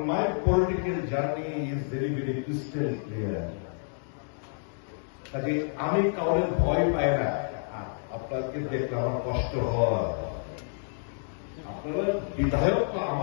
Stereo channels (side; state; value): right; silent; digital silence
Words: মাই political journey is very very crystal clear. কাজে আমি কাউরে ভয় পাই না। আপনাকে দেখলে আমার কষ্ট হয়। আপনারা বিধায়ক তো